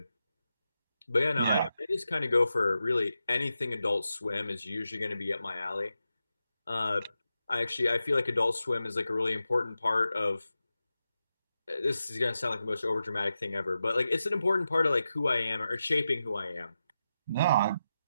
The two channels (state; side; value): inverted; both; correlation -0.90